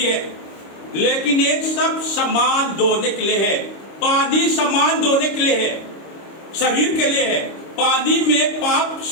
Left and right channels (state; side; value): late; right; 26 ms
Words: है, लेकिन एक सब सामान धोने के लिए है। पानी सामान धोने के लिए है, शरीर के लिए है। पानी में पाप